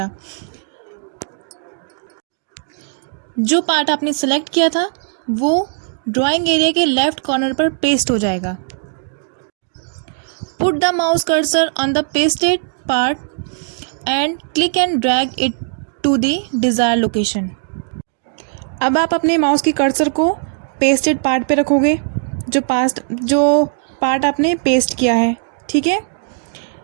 जो पार्ट आपने सेलेक्ट किया था वो ड्राइंग एरिया के लेफ्ट कॉर्नर पर पेस्ट हो जाएगा। Put the mouse cursor on the pasted part and click and drag it to the desire location, अब आप अपने माउस की कर्सर को पेस्टेड पार्ट पे रखोगे, जो पार्ट आपने पेस्ट किया है, ठीक है,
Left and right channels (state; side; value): silent; left; digital silence